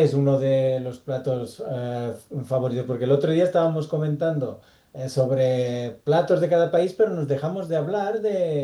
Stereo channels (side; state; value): both; identical; correlation 1.00